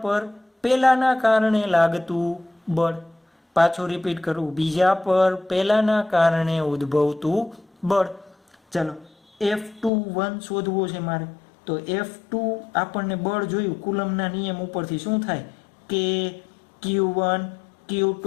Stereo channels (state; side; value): drops out; right; at 9.9 s